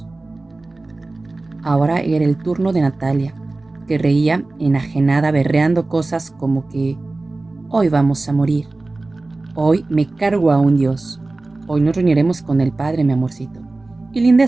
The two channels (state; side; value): quieter; left; 3.2 dB